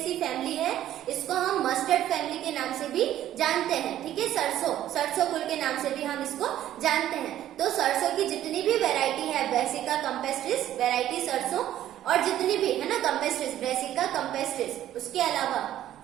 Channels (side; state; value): left; quieter; 12.4 dB